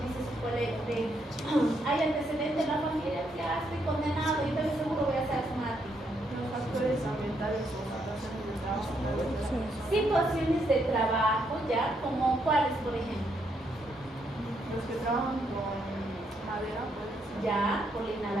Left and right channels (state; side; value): normal; both; correlation 0.76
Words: dice su colega, hay antecedentes en la familia, ya estoy condenado y entonces seguro voy a ser asmática. Los factores ambientales o situaciones de trabajo. Situaciones de trabajo, ya, como cuáles, por ejemplo. Los que trabajan con madera, pues. Ya, por la